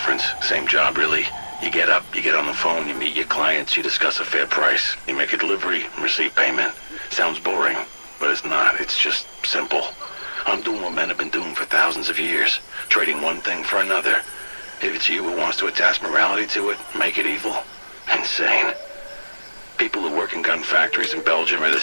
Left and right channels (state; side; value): inverted; both; correlation -1.00